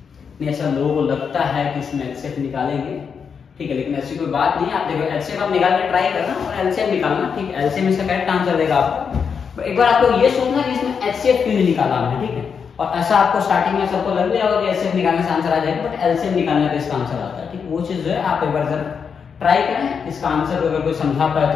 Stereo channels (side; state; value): right; quieter; 6.4 dB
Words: नहीं, ऐसा लोगों को लगता है कि इसमें एचसीएफ निकालेंगे, ठीक है, लेकिन ऐसी कोई बात नहीं है। आप देखो एचसीएफ आप निकाल के ट्राई करना और एलसीएम निकालना, ठीक है। एलसीएम इसका करेक्ट आंसर देगा आपको। एक बार आपको ये सोचना कि इसमें एचसीएफ क्यों नहीं निकाला हमने, ठीक है। और ऐसा आपको स्टार्टिंग में सबको लग गया होगा कि एचसीएफ निकालने से आंसर आ जाएगा, बट एलसीएम निकालने पे इसका आंसर आता है, ठीक। वो चीज जो है आप एक बार जरा ट्राई करें, इसका आंसर अगर कोई समझा पाए तो